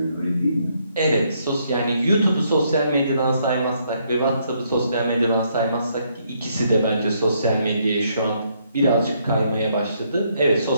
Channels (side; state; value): both; inverted; correlation -0.72